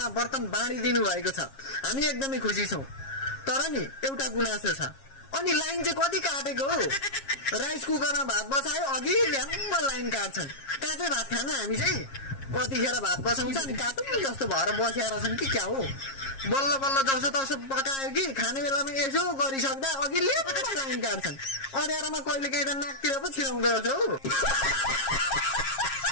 बर्तन बाँडिदिनु भएको छ। हामी एकदमै खुसी छौं। तर नि एउटा गुनासो छ। अनि लाइन चाहिँ कति काटेको हो? राइस कुकरमा भात बसायो अघि ल्याम्म लाइन काट्छन्। कहाँ चाहिँ भात खान हामी चाहिँ कतिखेर भात बसाउँछ अनि काटुन जस्तो भएर बसेर छन् कि क्या हो? बल्ल बल्ल जसो तसो पकायो कि खाने बेलामा यसो गरिसक्दा अघि ल्याम्म लाइन काट्छन्। अँध्यारोमा कहिले काहीँ त नाकतिर पो छिराउँदो रहेछ हौ।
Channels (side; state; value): right; late; 7.4 ms